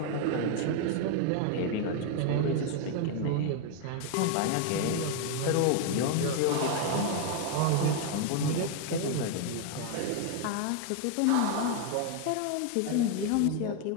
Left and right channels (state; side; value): different; both; correlation 0.00